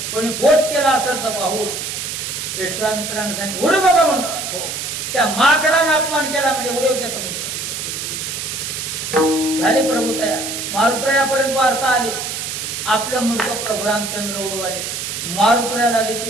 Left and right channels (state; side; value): noise; right; hiss, 5 dB below the sound